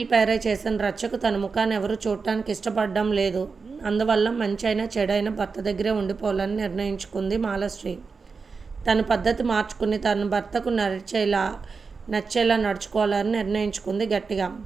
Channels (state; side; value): quieter; left; 4.8 dB